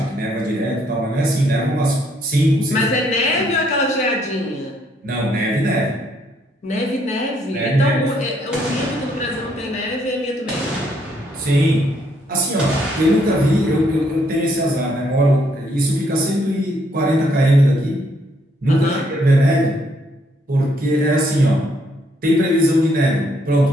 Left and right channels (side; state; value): both; normal; correlation 0.70